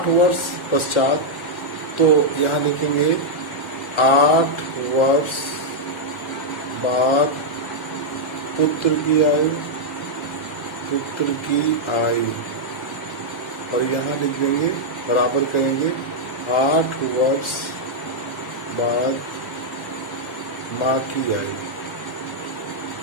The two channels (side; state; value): right; late; 1.0 ms